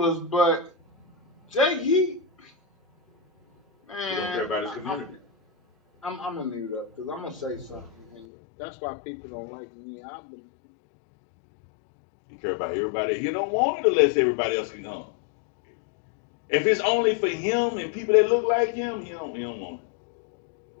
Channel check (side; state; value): right; drops out; at 8.2 s